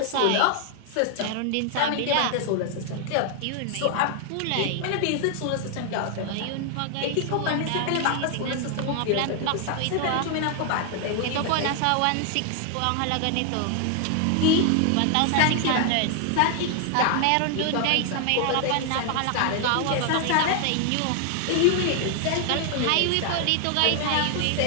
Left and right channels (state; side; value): different; both; correlation 0.00